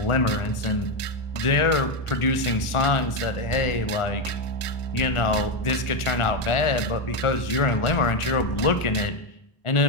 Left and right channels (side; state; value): right; late; 1.4 ms